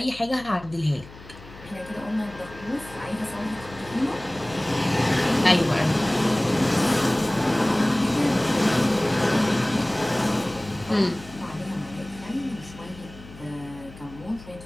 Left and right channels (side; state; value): left; noise; hum, 18 dB below the sound